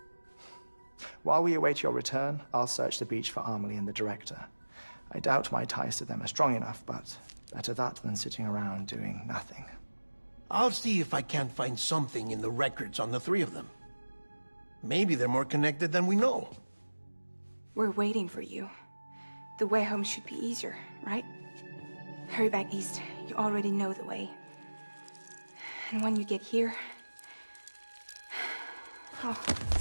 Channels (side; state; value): both; inverted; correlation -1.00